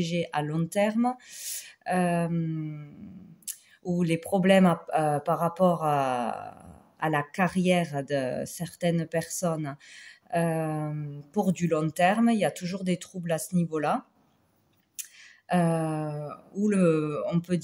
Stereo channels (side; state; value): both; identical; correlation 1.00